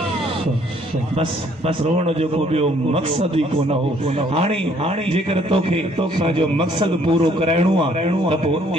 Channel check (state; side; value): normal; both; correlation 0.63